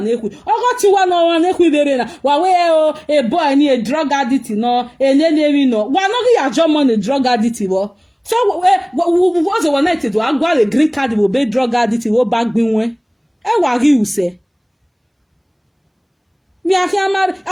ogo ti wa no wa neku dere na wa we a boy ni a drug addict no enene no wa no ya jomo ni drug addict wo. So what's the one night to agwa a green card will be drug addict will back bin we e wa ri use me akia marry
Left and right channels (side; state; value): both; identical; correlation 1.00